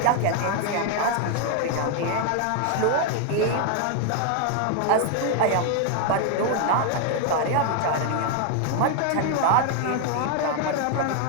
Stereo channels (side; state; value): both; different; correlation 0.00